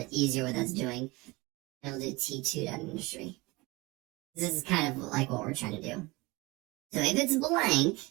easier what that's doing. And we'll do T2.industry. This is kind of like what we're trying to do. So if it's blank,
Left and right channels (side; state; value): left; quieter; 23.2 dB